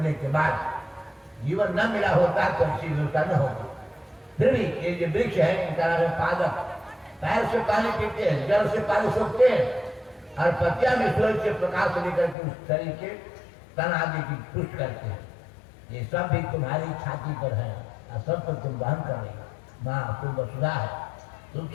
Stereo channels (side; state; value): right; drops out; at 12.4 s